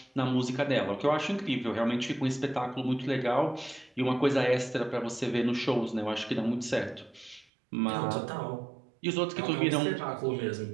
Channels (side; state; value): left; drops out; at 7.5 s